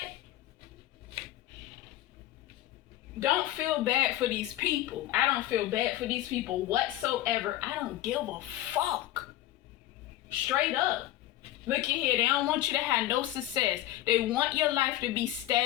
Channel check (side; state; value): right; quieter; 14.6 dB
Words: Don't feel bad for these people. I don't feel bad for these people whatsoever. I don't give a fuck. Straight up. Look at here, they don't want you to have no success. They want your life to be